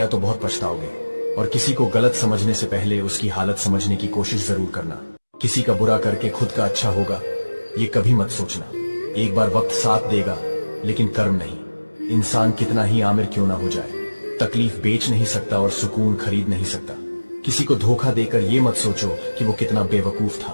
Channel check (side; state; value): both; inverted; correlation -1.00